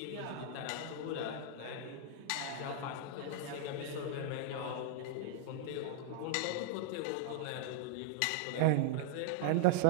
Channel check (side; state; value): both; different; correlation -0.01